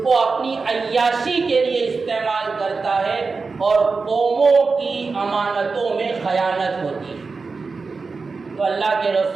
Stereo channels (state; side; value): quieter; left; 4.4 dB